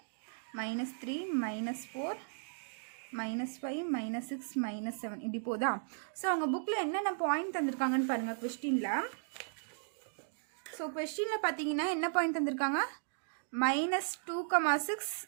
-3 -4 -5 -6 -7 இப்படி போதா? ஸோ அவங்க புக்கில் என்னென்ன பாயிண்ட் தந்திருக்காங்கன்னு பாருங்கள் கொஸ்டினில். ஸோ கொஸ்டினில் பார்த்தீங்கன்னா என்ன பாயிண்ட் தந்திருக்காங்க? -2,6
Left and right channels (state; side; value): silent; left; digital silence